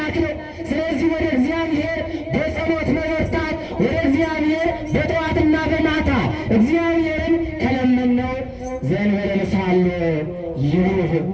ነው። ስለዚህ ወደ እግዚአብሔር በጸሎት መበርታት፣ ወደ እግዚአብሔር በጠዋትና በማታ እግዚአብሔርን ከለመነው ዘእንበለ ንስሐሎ ይሩህ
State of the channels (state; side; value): identical; both; correlation 1.00